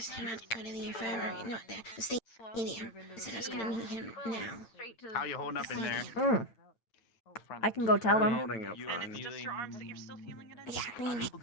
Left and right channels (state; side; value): late; right; 8.8 ms